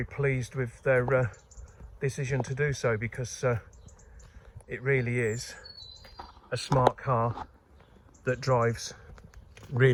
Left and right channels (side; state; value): both; identical; correlation 1.00